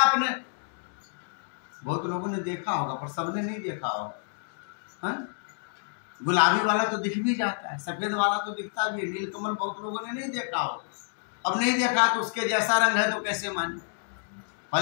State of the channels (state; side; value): silent; right; digital silence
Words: बहुत लोगों ने देखा होगा पर सबने नहीं देखा होगा। गुलाबी वाला तो दिख भी जाता है, सफेद वाला तो दिखता भी है, नील कमल बहुत लोगों ने नहीं देखा होगा। अब नहीं देखा तो उसके जैसा रंग है तो कैसे माने?